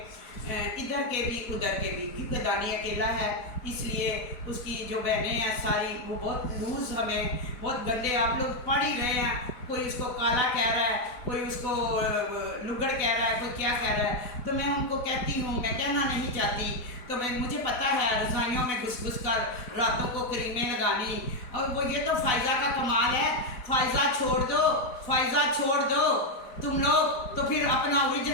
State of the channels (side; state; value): right; late; 4.0 ms